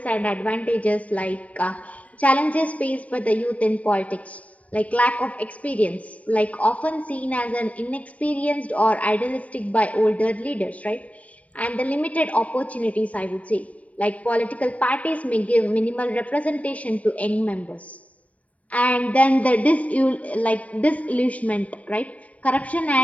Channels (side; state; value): right; late; 0.069 ms